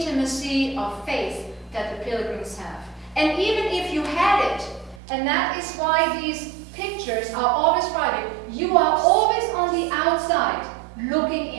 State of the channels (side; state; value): left; drops out; at 5.0 s